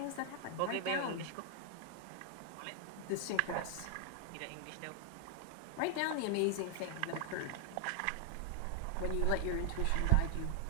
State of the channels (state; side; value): different; both; correlation 0.00